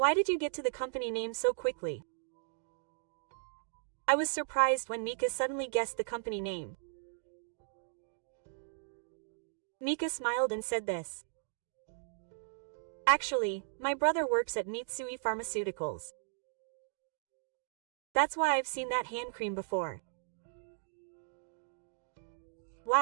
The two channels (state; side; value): silent; left; digital silence